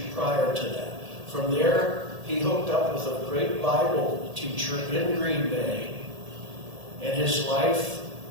prior to that. From there, he hooked up with a great Bible teacher in Green Bay, and his life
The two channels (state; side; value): late; left; 1.8 ms